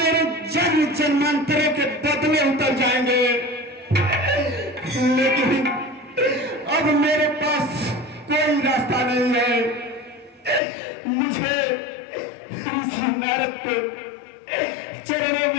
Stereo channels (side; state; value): right; drops out; at 10.6 s